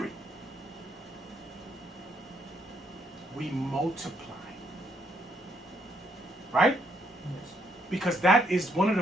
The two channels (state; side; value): normal; both; correlation 0.73